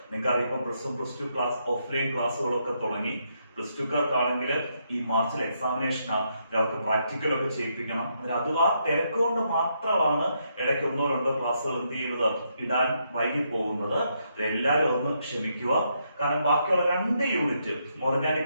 നിങ്ങൾക്കറിയാം. ഇപ്പം +1 +2 ക്ലാസ് ഓഫ്ലൈൻ ക്ലാസ്സുകളൊക്കെ തുടങ്ങി. +2 കാർക്കാണെങ്കിൽ ഈ മാർച്ചിൽ എക്സാമിനേഷനാണ്, അവർക്ക് പ്രാക്ടിക്കലൊക്കെ ചെയ്യിപ്പിക്കണം. അത് ആ തിരക്ക് കൊണ്ട് മാത്രമാണ് ഇടയ്ക്ക് 1-2 ക്ലാസ്സുകൾ എന്ത് ചെയ്യുന്നത്, ഇടാൻ വൈകി പോകുന്നത്. എല്ലാവരും ഒന്ന് ക്ഷമിക്കുക. കാരണം ബാക്കിയുള്ള 2 യൂണിറ്റ്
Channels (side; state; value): both; inverted; correlation -0.78